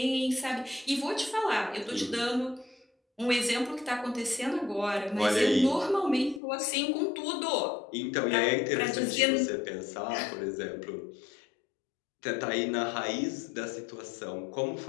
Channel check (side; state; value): right; drops out; at 6.4 s